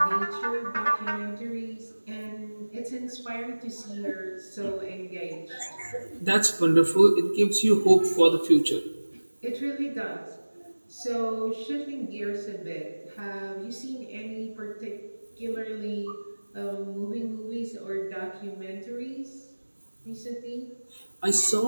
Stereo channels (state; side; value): inverted; both; correlation -1.00